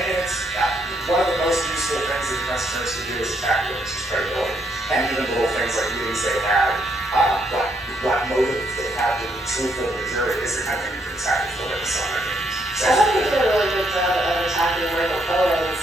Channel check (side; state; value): both; normal; correlation 0.74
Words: it's one of the most useful things that defense attorneys can do is attack witnesses' credibility. And even little things like meetings they had, what motive they had to be truthful to the jury is the kind of thing you can attack for witness on their case. I thought they did a really good job of attacking Michael Cohen